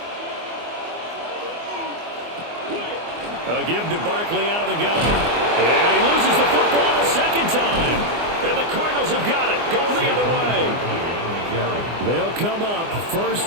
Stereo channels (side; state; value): left; late; 24 ms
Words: A give to Barkley out of the gun. And he loses the football the 2nd time. And the Cardinals have got it, going the other way. They'll come up